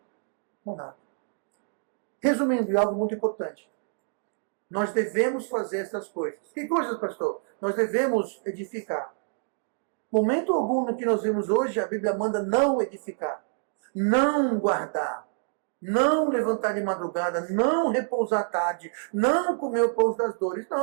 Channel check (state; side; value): silent; left; 60 dB below the other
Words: Para nada. Resumindo, algo muito importante. Nós devemos fazer essas coisas. Que coisas, pastor? Nós devemos edificar. Momento algum no que nós vimos hoje, a Bíblia manda não edificar, não guardar, não levantar de madrugada, não repousar à tarde, não comer o pão das dores.